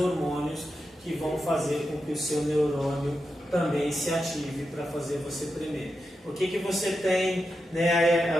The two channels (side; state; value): both; normal; correlation 0.88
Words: que vão fazer com que o seu neurônio também se ative para fazer você tremer. Por que você tem, né,